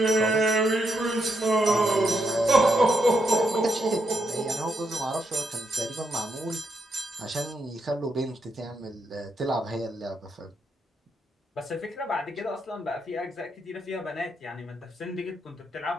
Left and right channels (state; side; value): normal; both; correlation 0.80